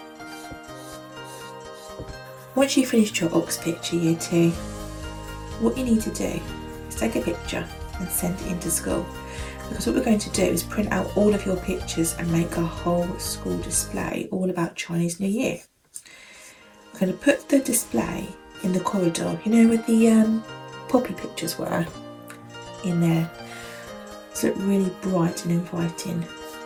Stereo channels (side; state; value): both; identical; correlation 1.00